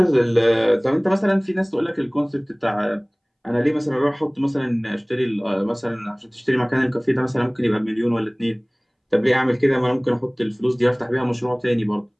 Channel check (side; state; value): both; identical; correlation 1.00